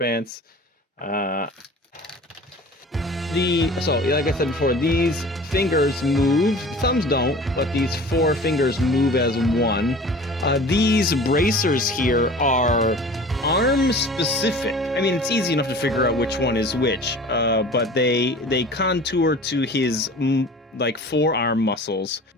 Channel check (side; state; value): both; normal; correlation 0.42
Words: So like I said before, these fingers move. Thumbs don't, but these 4 fingers move as one. These bracers here are arm specific. I mean, it's easy enough to figure out which one is which, but they contour to his like forearm muscles.